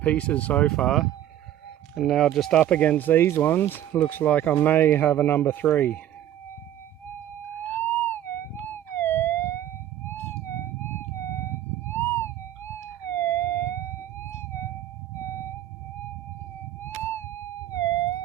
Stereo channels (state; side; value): quieter; left; 12.0 dB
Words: so far. And now just up against these ones, looks like I may have a number 3.